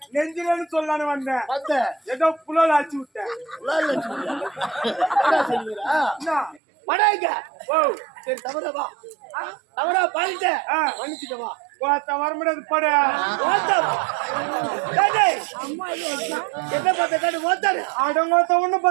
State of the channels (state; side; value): drops out; left; at 6.6 s